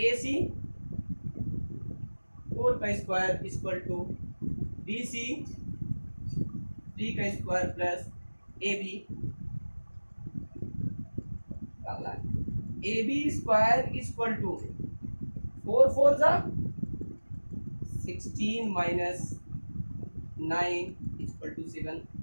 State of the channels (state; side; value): inverted; both; correlation -1.00